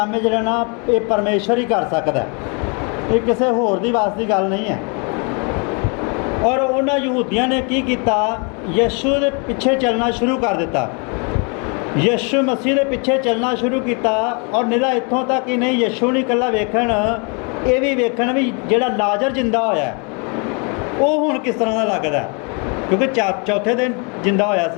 ਹੈ ਜਿਹੜਾ ਨਾ ਇਹ ਪਰਮੇਸ਼ਰ ਹੀ ਕਰ ਸਕਦਾ, ਇਹ ਕਿਸੇ ਹੋਰ ਦੀ ਵਾਸ ਦੀ ਗੱਲ ਨਹੀਂ ਹੈ। ਔਰ ਉਹਨਾਂ ਯਹੂਦੀਆਂ ਨੇ ਕੀ ਕੀਤਾ, ਯਿਸੂ ਦੇ ਪਿੱਛੇ ਚੱਲਣਾ ਸ਼ੁਰੂ ਕਰ ਦਿੱਤਾ, ਯਿਸੂ ਮਸੀਹ ਦੇ ਪਿੱਛੇ ਚੱਲਣਾ ਸ਼ੁਰੂ ਕੀਤਾ। ਔਰ ਨਿਰਾ ਇੱਥੋਂ ਤੱਕ ਹੀ ਨਹੀਂ, ਯਿਸੂ ਨਹੀਂ ਇਕੱਲਾ ਵੇਖਣ, ਇਹ ਵੀ ਵੇਖਣ ਵੀ ਜਿਹੜਾ ਲਾਜ਼ਰ ਜਿੰਦਾ ਹੋਇਆ ਉਹ ਹੁਣ ਕਿਸ ਤਰ੍ਹਾਂ ਦਾ ਲੱਗਦਾ, ਕਿਉਂਕਿ ਚੌਥੇ ਦਿਨ ਜਿੰਦਾ ਹੋਇਆ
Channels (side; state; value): right; quieter; 34.9 dB